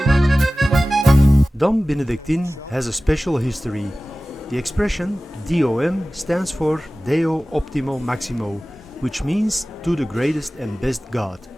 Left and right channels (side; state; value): both; normal; correlation 0.97